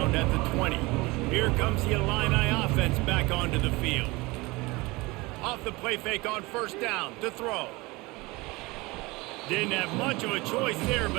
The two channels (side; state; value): left; quieter; 23.1 dB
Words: at the 20. Here comes the Illini offense back onto the field. Off the play fake on 1st down to throw. Didn't have much of a choice there,